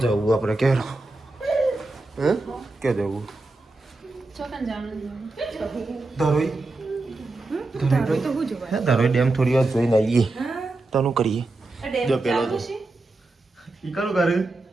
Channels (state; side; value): quieter; left; 3.1 dB